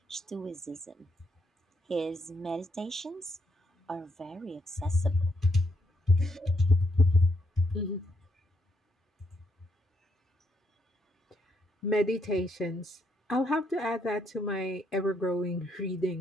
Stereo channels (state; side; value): normal; both; correlation 0.76